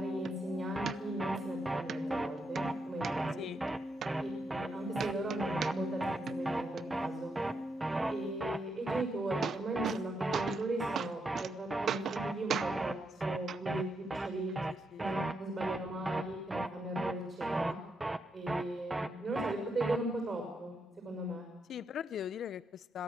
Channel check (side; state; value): both; normal; correlation 0.81